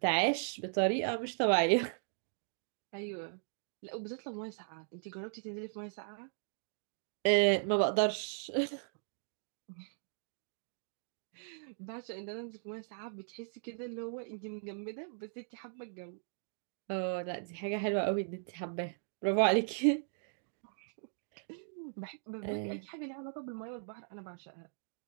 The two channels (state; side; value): silent; left; digital silence